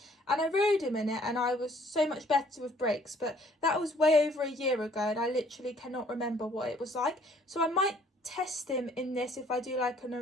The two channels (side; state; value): both; normal; correlation 0.60